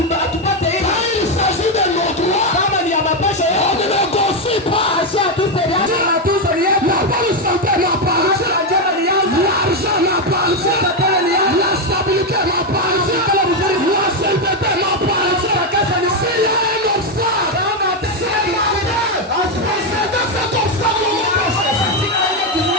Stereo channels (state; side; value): normal; both; correlation 0.06